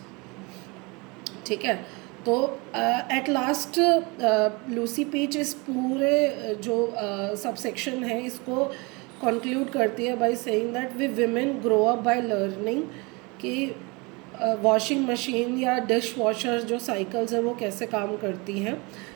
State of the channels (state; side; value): quieter; left; 27.4 dB